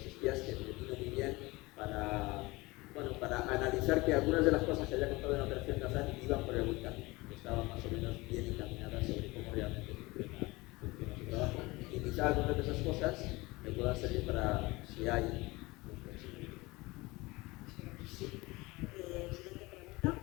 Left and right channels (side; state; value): right; quieter; 22.4 dB